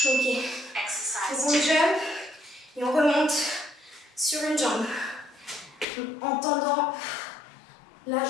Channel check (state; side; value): drops out; right; at 5.9 s